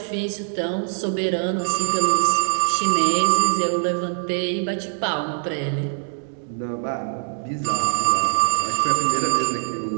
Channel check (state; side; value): silent; left; digital silence